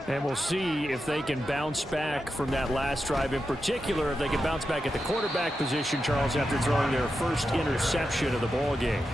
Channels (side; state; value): both; normal; correlation 0.89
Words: And we'll see if they can bounce back from that last drive. In particular, if they can bounce back at the quarterback position, Charles, after throwing their first interception of the ball game.